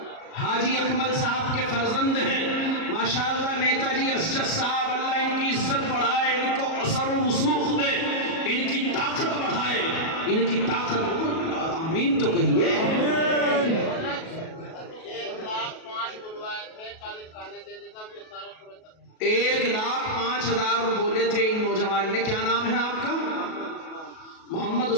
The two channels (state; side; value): late; right; 37 ms